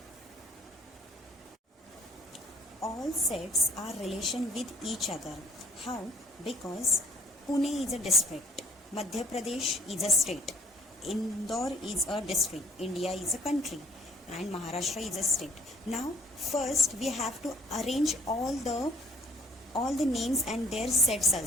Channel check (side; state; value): both; normal; correlation 0.57